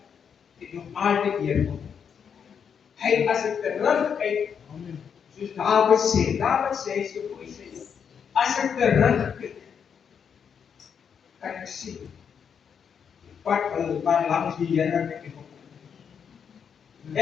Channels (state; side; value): quieter; right; 7.2 dB